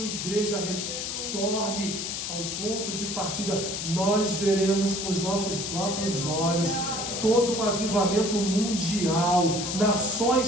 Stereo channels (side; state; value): left; noise; hiss, 4 dB below the sound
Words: igreja retorne ao ponto de partida. Nós veremos com os nossos próprios olhos todo um avivamento mundial, nações